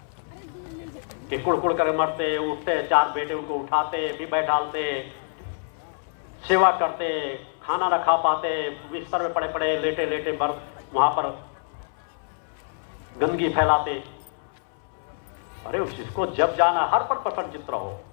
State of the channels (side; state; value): right; silent; 61 dB below the other